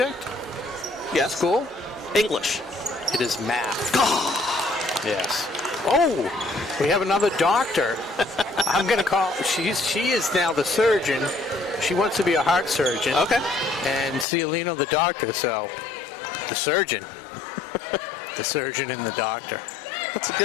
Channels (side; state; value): right; drops out; at 14.2 s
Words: Yes. School? English. It is math. Yes. Oh, we have another doctor. I'm going to call. She is now the surgeon. She wants to be a heart surgeon. Okay. And Cialino the doctor. So the surgeon. The surgeon and the doctor. It's a